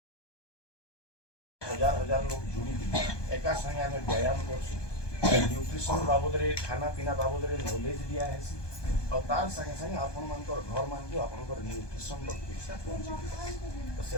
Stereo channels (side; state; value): right; late; 1.2 ms